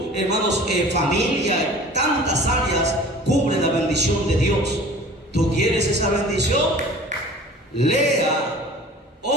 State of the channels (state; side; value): normal; both; correlation 0.44